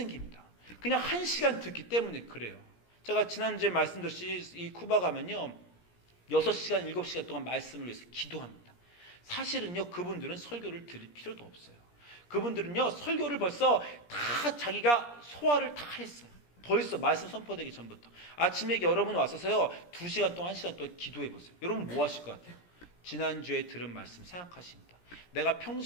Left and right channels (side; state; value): right; late; 17 ms